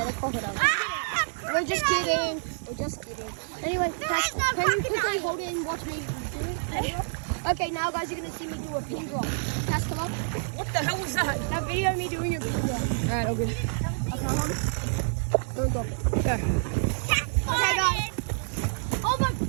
the crocodile. Ah, We're just kidding. We're just kidding. Anyway, Cass, is no can you quickly crocodile. hold it and watch me do it? Okay, now guys, you're gonna see me do a pin drop. Cass, come up. What the hell was that? Now video me doing a pin drop. Alright, all good. Okay, hold it. Don't drop it. Go. Okay, guys. Oh my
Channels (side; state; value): left; silent; digital silence